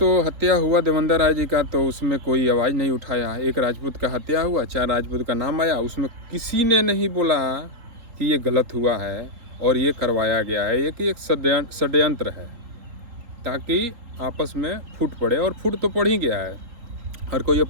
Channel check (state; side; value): late; left; 3.8 ms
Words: हत्या हुआ देवेंद्र राय जी का, तो उसमें कोई आवाज़ नहीं उठाया। एक राजपूत का हत्या हुआ, 4 राजपूत का नाम आया, उसमें किसी ने नहीं बोला कि ये गलत हुआ है और ये करवाया गया है। ये कि एक षड्यंत्र है ताकि आपस में फूट पड़े, और फूट तो पड़ ही गया है। हर कोई